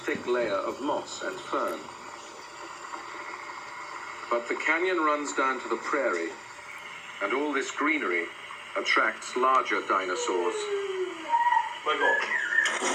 layer of moss and fern. But the canyon runs down to the prairie, and all this greenery attracts larger dinosaurs.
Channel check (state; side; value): identical; both; correlation 1.00